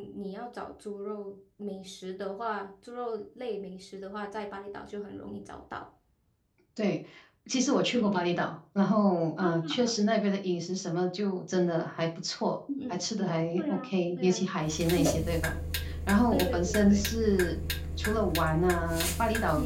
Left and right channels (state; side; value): identical; both; correlation 1.00